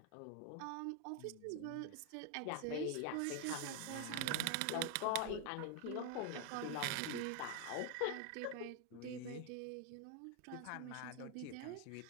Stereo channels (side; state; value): both; different; correlation 0.01